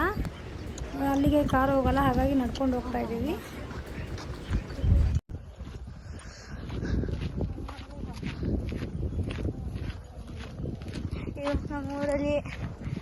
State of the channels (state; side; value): identical; both; correlation 1.00